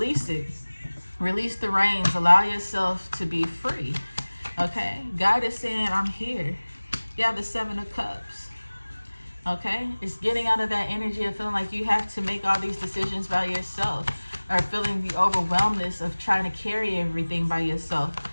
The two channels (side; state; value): both; inverted; correlation -1.00